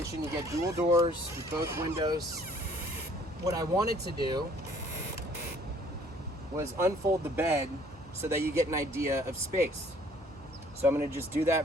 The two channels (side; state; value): both; normal; correlation 0.58